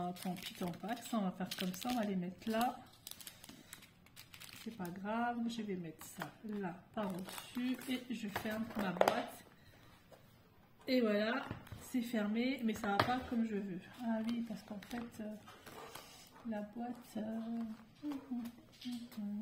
pis, tant pas. Ça, on va faire comme ça. On va les mettre là. C'est pas grave. Je vais mettre ça là, par-dessus. Et je ferme ma boîte. Et voilà. C'est fermé. Mais ça va pas comme je veux. Ah oui, parce qu'en fait, la boîte...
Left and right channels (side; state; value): both; identical; correlation 1.00